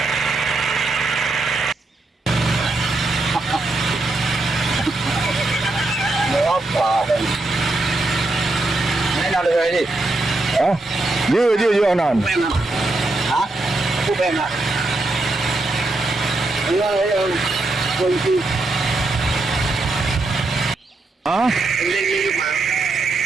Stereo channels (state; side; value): quieter; left; 3.0 dB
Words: nào được rồi đi. Hah? Dia non. Hả? Cô bèn à? Con chi? Hah? Lên mà.